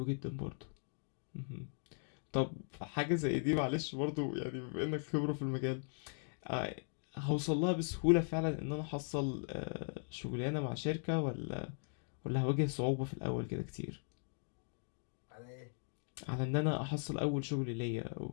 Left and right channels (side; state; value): right; silent; digital silence